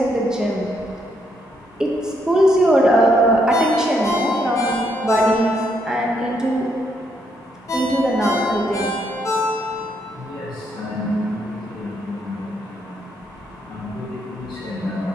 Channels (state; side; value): normal; both; correlation 0.75